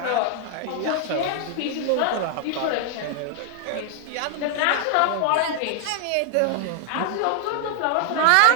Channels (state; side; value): different; both; correlation 0.00